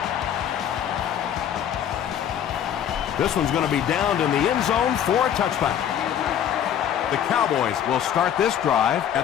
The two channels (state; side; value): quieter; right; 9.6 dB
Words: This one's going to be downed in the end zone for a touchback. The Cowboys will start this drive